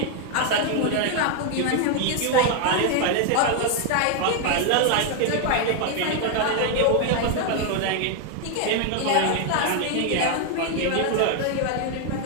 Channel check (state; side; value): different; both; correlation 0.00